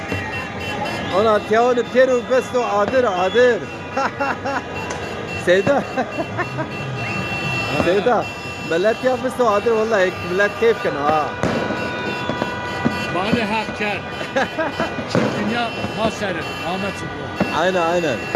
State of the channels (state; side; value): identical; both; correlation 1.00